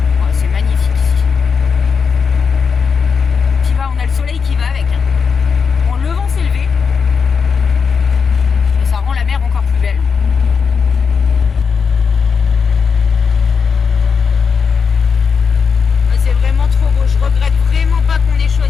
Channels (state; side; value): quieter; right; 5.9 dB